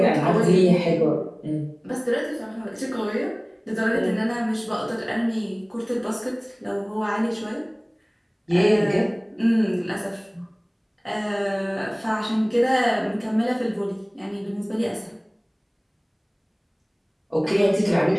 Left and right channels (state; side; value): identical; both; correlation 1.00